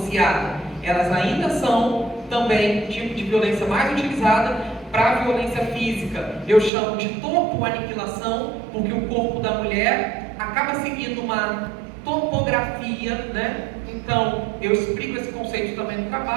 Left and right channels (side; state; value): left; drops out; at 6.7 s